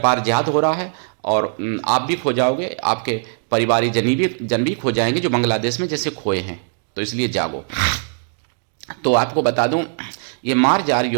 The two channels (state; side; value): silent; left; digital silence